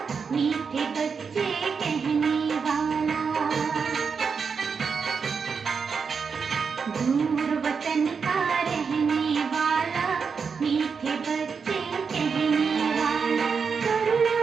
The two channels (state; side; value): quieter; left; 5.7 dB